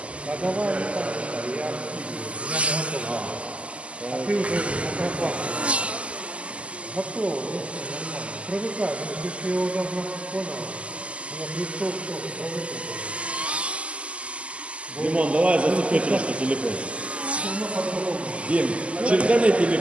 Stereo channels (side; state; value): left; late; 0.058 ms